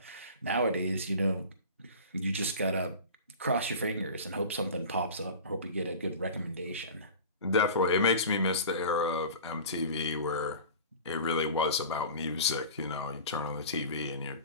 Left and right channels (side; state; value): both; inverted; correlation -0.37